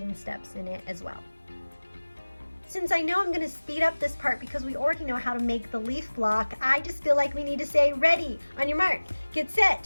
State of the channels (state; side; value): inverted; both; correlation -1.00